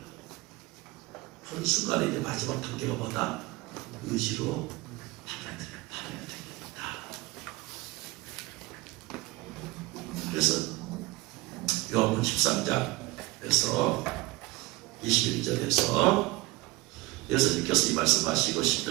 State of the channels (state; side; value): quieter; left; 21.9 dB